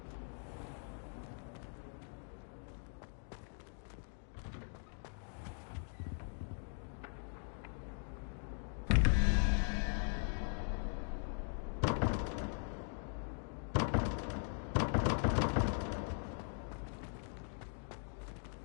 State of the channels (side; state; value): right; silent; 51 dB below the other